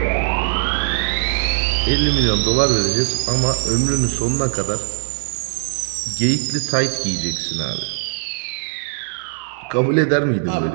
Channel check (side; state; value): left; silent; digital silence